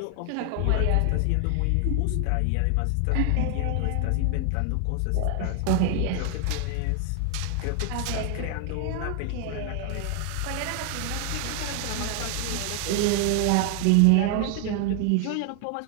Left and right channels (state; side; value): different; both; correlation 0.00